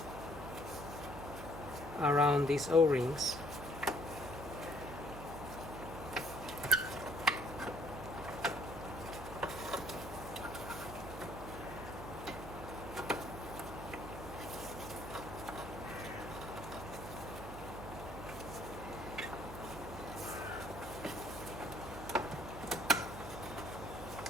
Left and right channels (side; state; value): right; noise; hum, 9 dB below the sound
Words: around these O-rings.